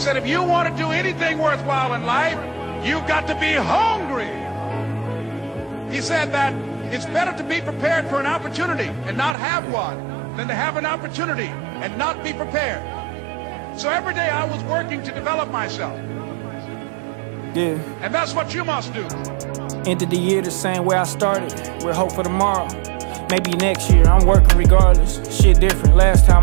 if you want to do anything worthwhile in life, you've got to be hungry. He said that it's better to be prepared for an opportunity and not have one than to have an opportunity and not be prepared. So every day I was working to develop myself. Yeah. And that's what you must do. Ended the year the same way I started, with hope for tomorrow. Maybe next year, I'm working regardless. Shit different, last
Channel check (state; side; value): drops out; left; at 9.3 s